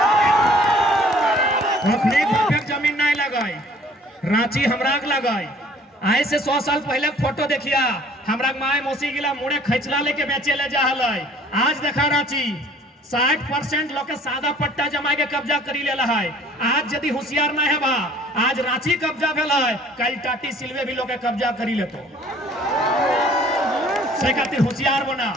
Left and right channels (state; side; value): normal; both; correlation 0.54